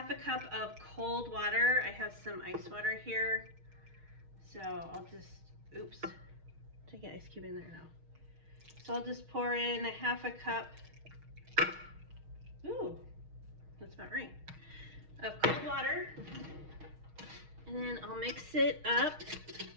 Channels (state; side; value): late; left; 6.4 ms